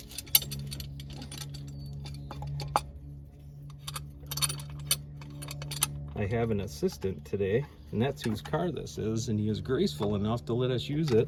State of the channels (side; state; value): both; identical; correlation 1.00